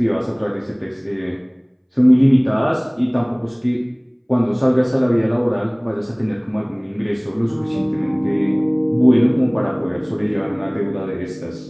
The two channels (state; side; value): identical; both; correlation 1.00